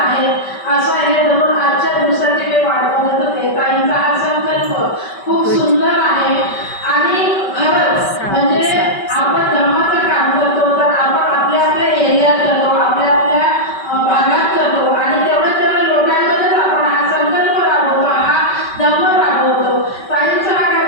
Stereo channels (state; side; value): late; right; 5.2 ms